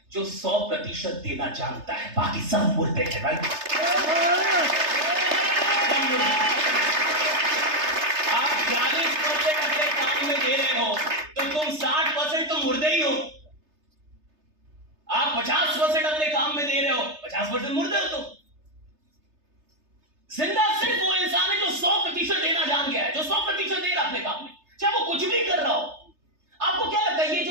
जो 100% देना जानता है, बाकी सब मुर्दे हैं भाई। आप 40% अपने काम में दे रहे हो तो तुम 60% तो मुर्दे ही हो। आप 50% अपने काम में दे रहे हो, 50% मुर्दे हो तुम। जिंदा सिर्फ वो इंसान है जो 100% देना जान गया है, जो 100% दे रहा अपने काम में, चाहे वो कुछ भी कर रहा हो। आपको क्या लगता है ये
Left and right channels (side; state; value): left; late; 3.3 ms